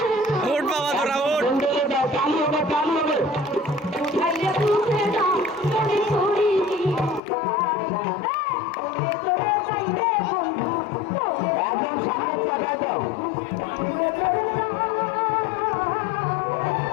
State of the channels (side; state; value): right; drops out; at 7.2 s